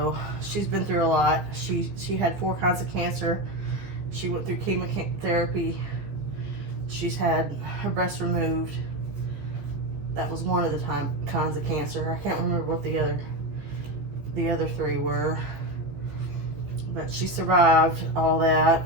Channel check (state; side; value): late; left; 15 ms